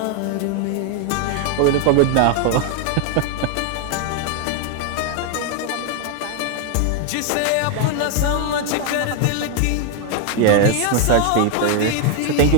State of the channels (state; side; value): different; both; correlation 0.01